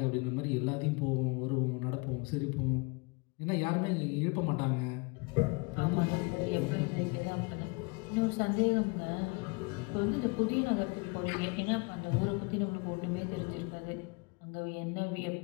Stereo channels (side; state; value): right; quieter; 30.1 dB